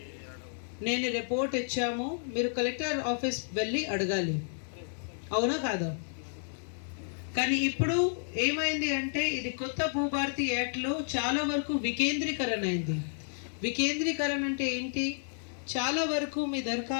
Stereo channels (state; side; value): silent; right; digital silence